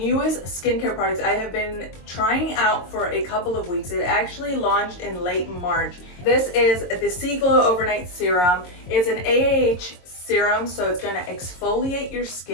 skincare products I have been trying out for a couple of weeks. It actually launched in late March. This is the Seaglow Overnight Serum. It's an AAH serum, so it's going to exfoliate your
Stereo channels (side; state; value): right; late; 22 ms